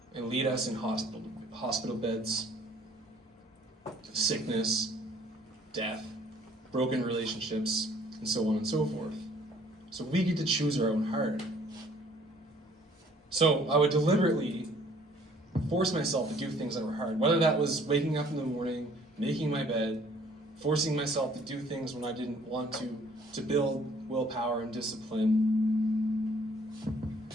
and lead us in hospital beds, sickness, death, broken relationships, and so on and so forth. So we get to choose our own heart. So I would deliberately force myself to do things that were hard, whether that was waking up in the morning, making my bed, forcing myself to do things when I didn't want to build willpower and discipline. I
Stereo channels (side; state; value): both; normal; correlation 0.58